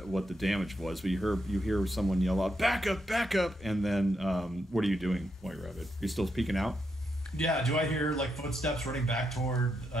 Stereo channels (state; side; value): normal; both; correlation 0.82